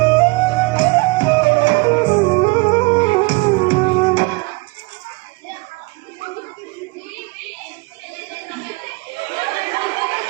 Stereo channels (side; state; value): left; quieter; 26.6 dB